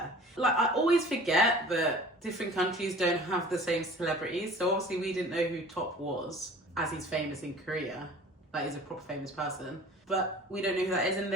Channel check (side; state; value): both; normal; correlation 0.44